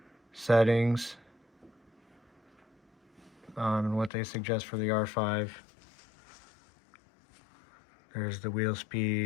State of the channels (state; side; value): drops out; right; at 4.1 s